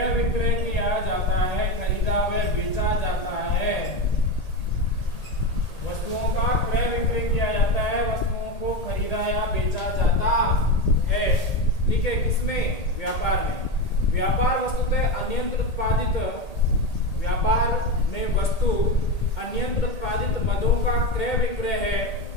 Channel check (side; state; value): right; late; 1.8 ms